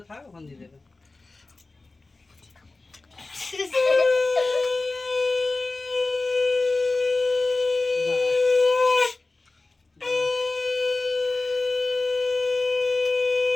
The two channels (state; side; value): quieter; right; 3.4 dB